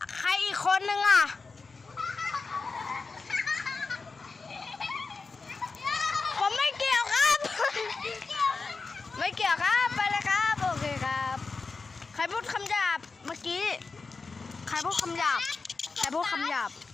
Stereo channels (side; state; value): right; quieter; 4.3 dB